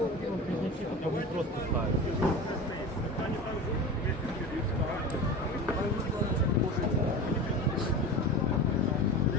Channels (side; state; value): both; normal; correlation 0.30